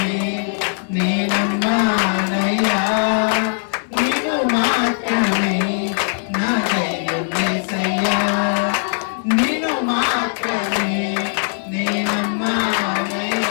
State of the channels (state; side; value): silent; right; digital silence